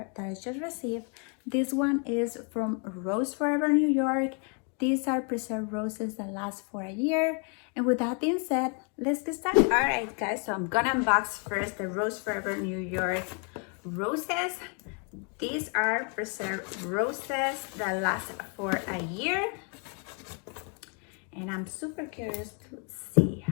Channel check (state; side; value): quieter; right; 37.7 dB